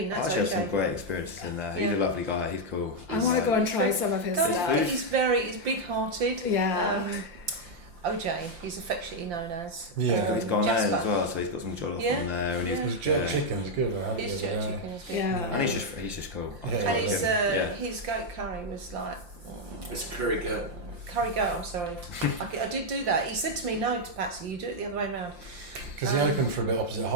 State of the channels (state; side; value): late; left; 5.7 ms